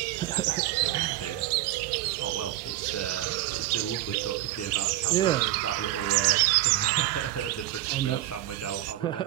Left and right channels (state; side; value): quieter; left; 14.5 dB